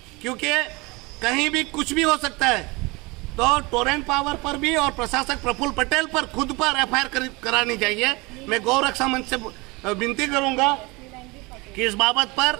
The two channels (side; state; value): left; quieter; 25.3 dB